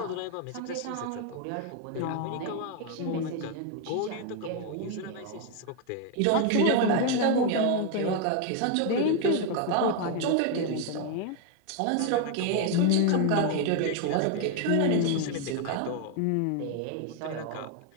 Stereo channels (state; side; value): different; both; correlation 0.01